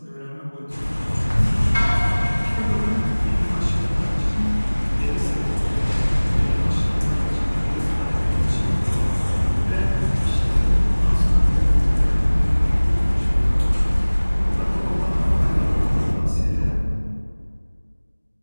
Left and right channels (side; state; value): both; inverted; correlation -1.00